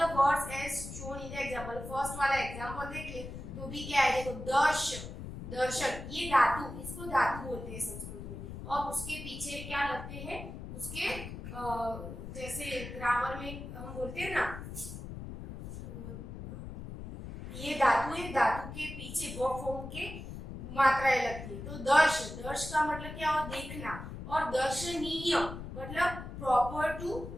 words as shown in the example, first वाला एग्जांपल देखिए तो भी क्या है, देखो दर्श, दर्शन, ये धातु, इसको धातु बोलते हैं संस्कृत में। और उसके पीछे क्या लगते हैं, उसके जैसे ग्रामर में हम बोलते हैं ना, ये धातु है, धातु के पीछे वो फॉर्म के मात्राएं लगती है। तो दर्श, दर्श का मतलब क्या हो, देखना। और दर्शनीय मतलब प्रॉपर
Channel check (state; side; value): noise; left; rumble, 9 dB below the sound